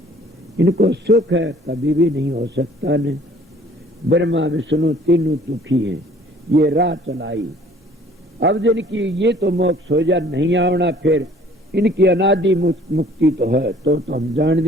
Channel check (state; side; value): normal; both; correlation 0.55